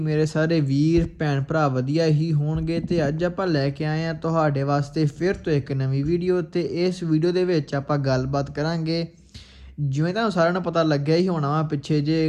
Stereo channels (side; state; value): both; identical; correlation 1.00